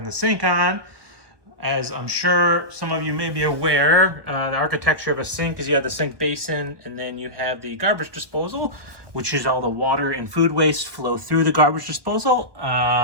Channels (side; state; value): left; late; 1.2 ms